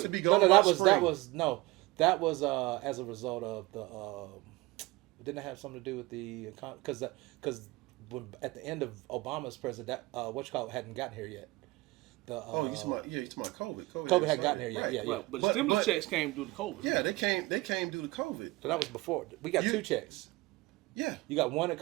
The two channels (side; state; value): left; quieter; 21.1 dB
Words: That was as a result of the. Didn't it have something to do with the because at the end of Obama's president, hadn't gotten here yet. You talking about COVID. COVID hadn't gotten here yet. Right. Yeah. But the stimulus checks came due to COVID. Yeah, they came due to COVID. So that was before. We got two checks. Yeah. You got one at